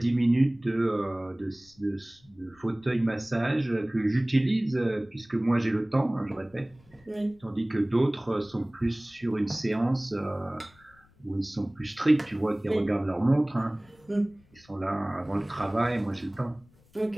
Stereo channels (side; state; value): left; noise; rumble, 30 dB below the sound